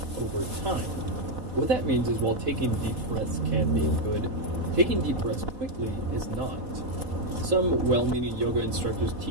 over time. What that means is while taking deep breaths can be good, taking deep breaths quickly is not. Some well-meaning yoga instructors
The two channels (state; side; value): late; left; 4.0 ms